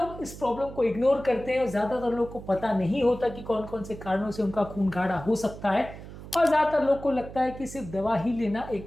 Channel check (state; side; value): noise; right; hum, 14 dB below the sound